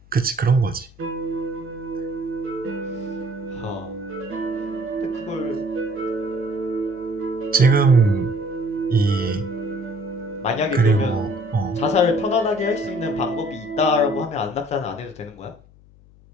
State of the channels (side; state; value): left; noise; hum, 25 dB below the sound